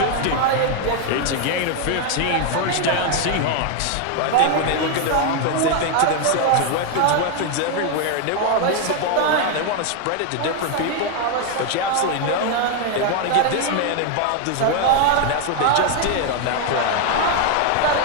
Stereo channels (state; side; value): different; both; correlation 0.01